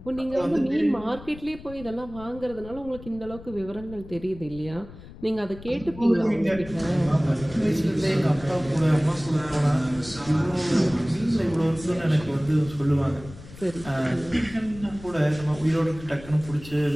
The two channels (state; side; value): noise; left; rumble, 16 dB below the sound